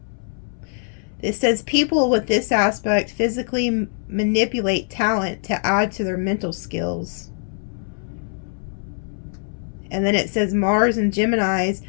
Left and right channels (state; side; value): silent; right; 64 dB below the other